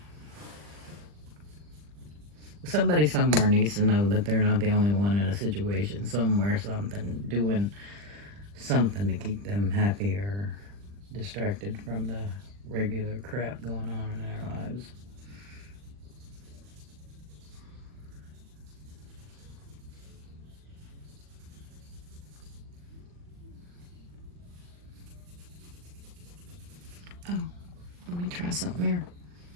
Somebody somewhere needs to know that they're not the only one in a situation. Somewhere, something, doing something to keep them happy or distracted from the regular crap going on in their lives. try something here.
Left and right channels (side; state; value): left; late; 40 ms